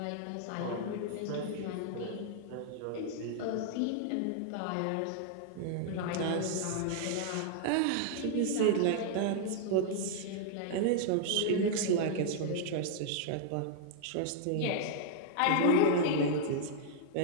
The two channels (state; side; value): different; both; correlation -0.01